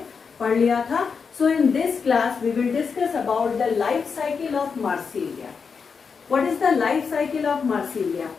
पढ़ लिया था। So in this class we will discuss about the life cycle of Marsilea. What is the life cycle of Marsilea?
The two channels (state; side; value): quieter; right; 5.6 dB